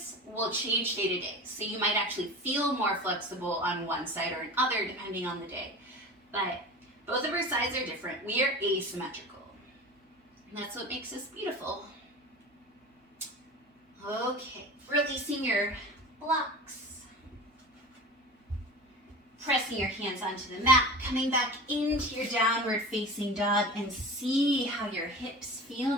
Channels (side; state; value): both; normal; correlation 0.34